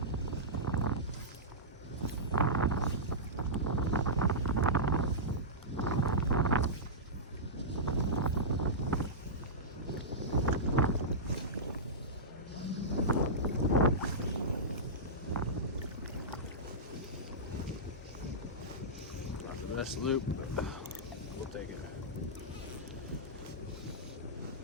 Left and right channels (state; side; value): normal; both; correlation -0.15